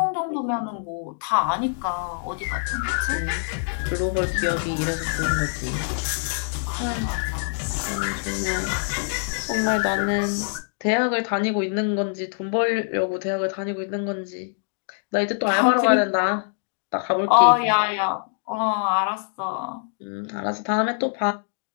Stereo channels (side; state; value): right; silent; digital silence